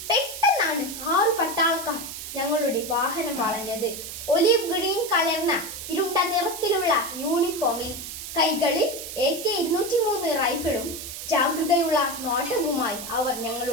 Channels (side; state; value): right; noise; hiss, 9 dB below the sound